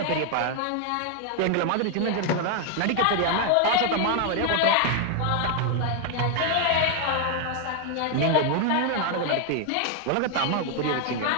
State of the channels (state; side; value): different; both; correlation 0.00